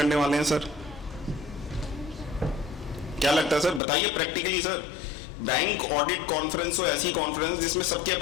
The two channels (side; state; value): right; drops out; at 3.8 s